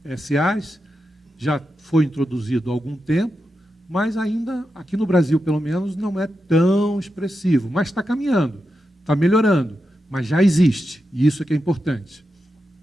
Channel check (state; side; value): normal; both; correlation 0.88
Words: SAs, já foi introduzido há algum tempo, mas ainda, aqui no Brasil, pelo menos, não é tão expressivo. Mas está caminhando, está melhorando, mas já existe, e isso é que é importante.